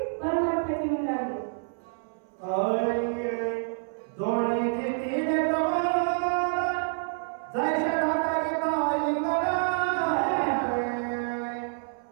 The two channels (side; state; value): left; silent; 59 dB below the other